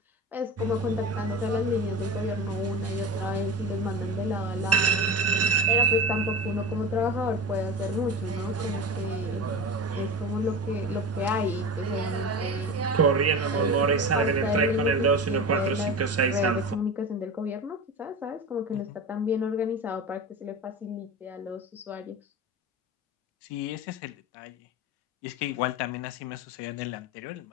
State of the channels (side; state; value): both; normal; correlation 0.29